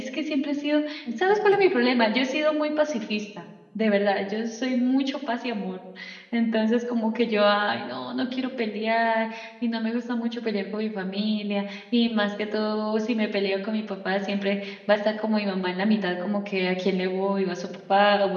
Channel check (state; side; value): identical; both; correlation 1.00